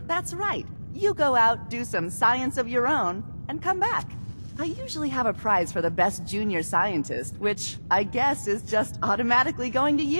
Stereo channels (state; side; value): inverted; both; correlation -1.00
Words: That's right. You go out, do some science of your own, and come back. I usually have a prize for the best junior scientist, which I guess is just automatically going to